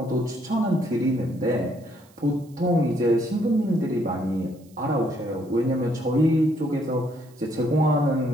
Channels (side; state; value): right; noise; hiss, 30 dB below the sound